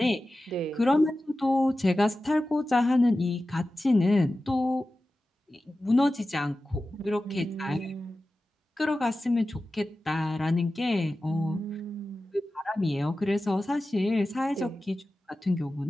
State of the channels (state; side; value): normal; both; correlation 0.94